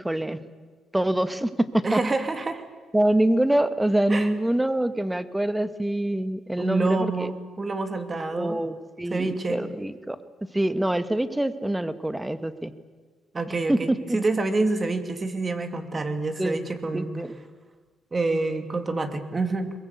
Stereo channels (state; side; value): normal; both; correlation 0.96